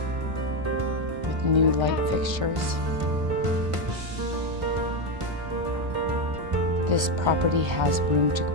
with new light fixtures. This property has room to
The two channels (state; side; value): late; left; 1.4 ms